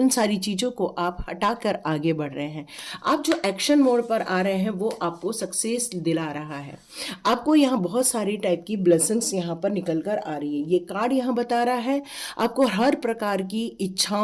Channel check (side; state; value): both; identical; correlation 1.00